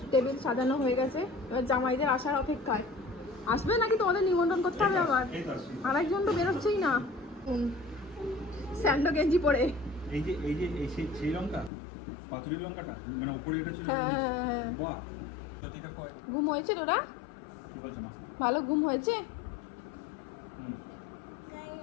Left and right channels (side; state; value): right; drops out; at 11.7 s